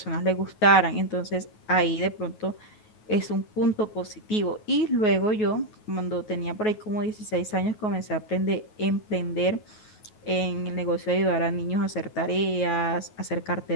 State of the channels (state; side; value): late; right; 9.4 ms